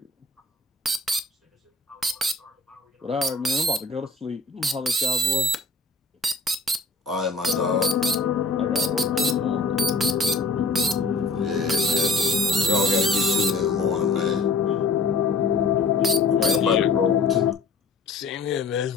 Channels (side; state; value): right; quieter; 3.8 dB